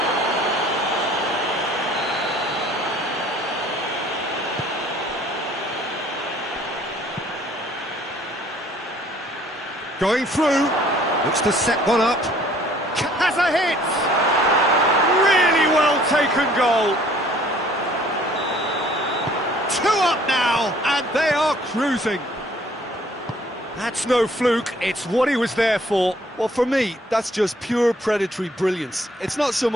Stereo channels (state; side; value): normal; both; correlation 0.57